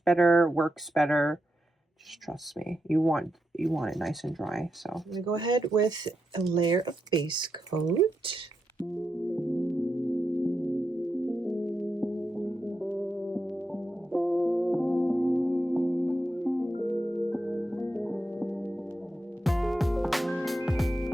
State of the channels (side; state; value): both; normal; correlation 0.85